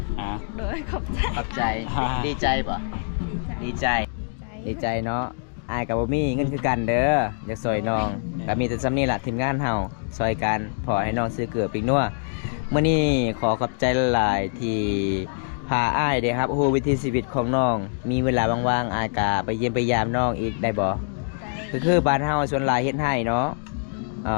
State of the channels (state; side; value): silent; right; 62 dB below the other